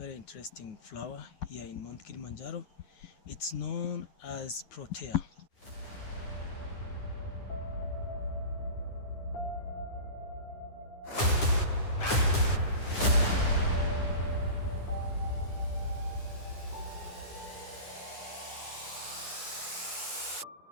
interesting flower here in Mount Kilimanjaro. It's known as Protea.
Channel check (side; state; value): right; late; 9.7 ms